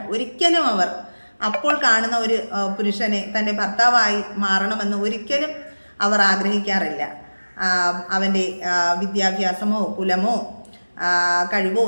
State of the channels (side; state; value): both; inverted; correlation -1.00